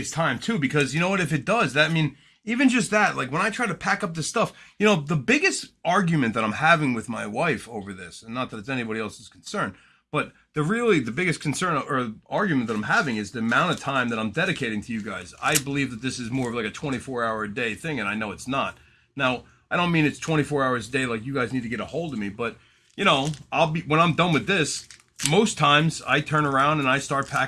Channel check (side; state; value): both; identical; correlation 1.00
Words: time too, because you know what? If it does, that I mean, even just that, like when I try to pack up this stuff, you know, the biggest argument that I'm having with my wife over this, and not that it's anybody else's concern, but the biggest concern or argument that I'm having is the amount of time that I'm dedicating to you guys. I believe that this is more of like a 24-hour a day thing, and I know it's not. Now, I don't mean it's 24 hours a day like you guys need to get a hold of me, but you know, when I'm done with this, most times I turn around and I start